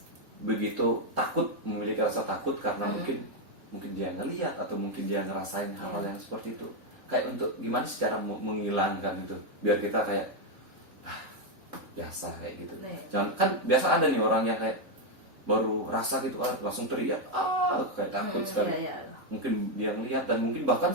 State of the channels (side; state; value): left; late; 3.8 ms